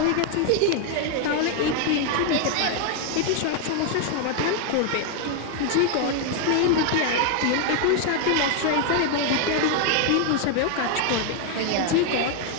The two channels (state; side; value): different; both; correlation 0.00